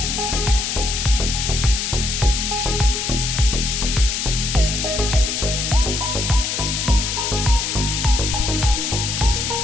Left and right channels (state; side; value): noise; left; hiss, 2 dB below the sound